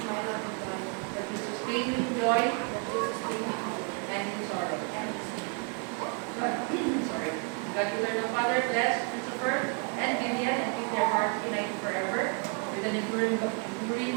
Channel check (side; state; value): left; quieter; 37.0 dB